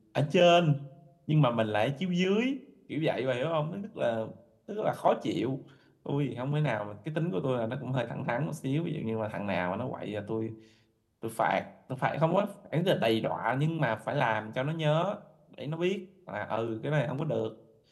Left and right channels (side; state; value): both; identical; correlation 1.00